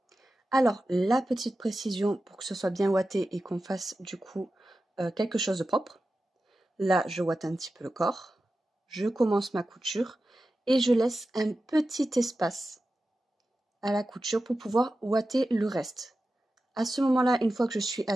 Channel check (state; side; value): normal; both; correlation 0.93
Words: Alors, la petite précision pour que ce soit bien ouaté et qu'on fasse du coup quelque chose de propre. Là, je ouate un petit peu le corps. Je commence ma couture et je laisse un petit espace à la couture pour pouvoir ouater le reste. À ce moment-là, une fois que je suis